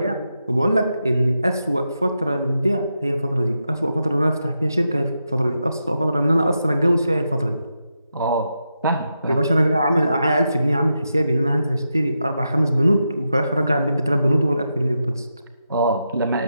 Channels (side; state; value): both; inverted; correlation -0.86